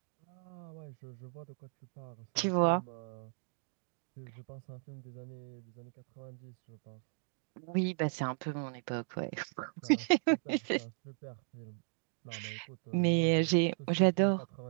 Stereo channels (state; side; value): silent; left; digital silence